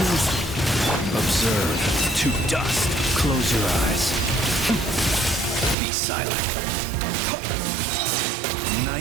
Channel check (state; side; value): drops out; left; at 5.8 s